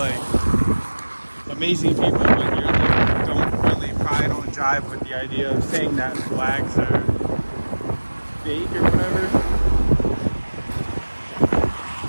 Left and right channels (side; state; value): both; inverted; correlation -1.00